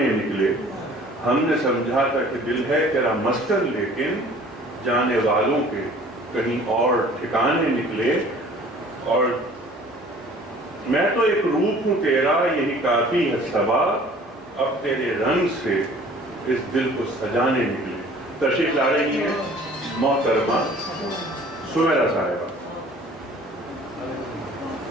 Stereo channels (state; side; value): normal; both; correlation 0.50